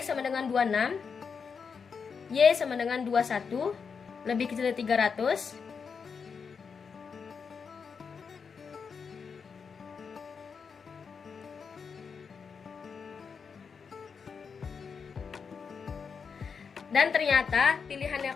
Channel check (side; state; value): right; quieter; 5.9 dB